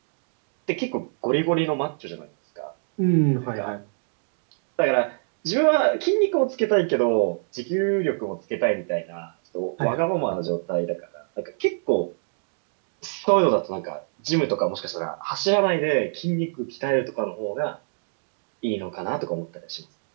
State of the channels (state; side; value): silent; left; digital silence